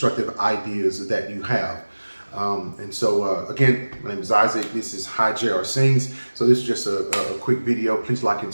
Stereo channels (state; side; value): inverted; both; correlation -1.00